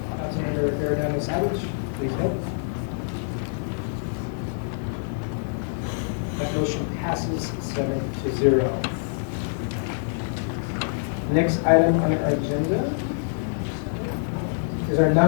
Councilmember Arredondo Savage. Please vote. That motion passes 7-0. Next item on our agenda is our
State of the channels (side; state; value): right; silent; digital silence